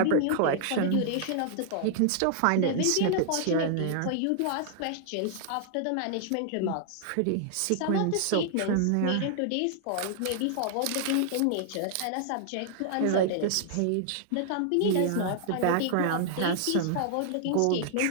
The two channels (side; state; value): both; different; correlation -0.01